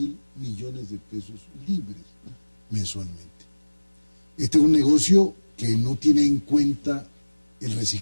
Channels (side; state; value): both; inverted; correlation -1.00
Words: millones de pesos libres mensualmente. Este es un negocio que no tiene en cuenta el